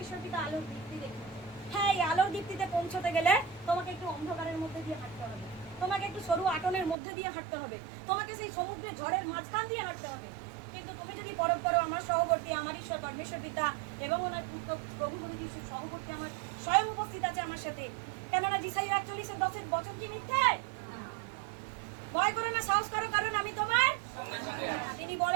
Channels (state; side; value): drops out; left; at 7.0 s